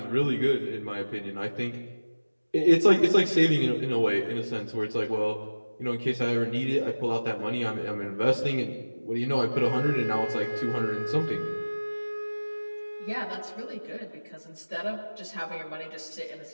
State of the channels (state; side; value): inverted; both; correlation -1.00